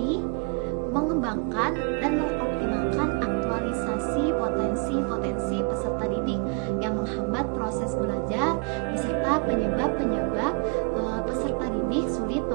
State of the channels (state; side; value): quieter; left; 33.9 dB